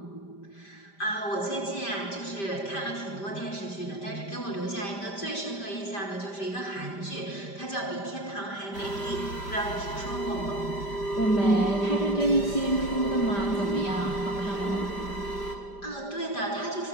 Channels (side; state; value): right; late; 5.1 ms